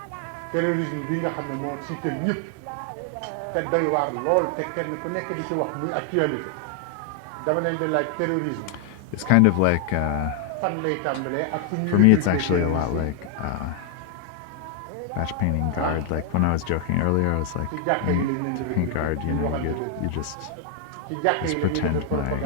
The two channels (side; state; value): both; different; correlation 0.00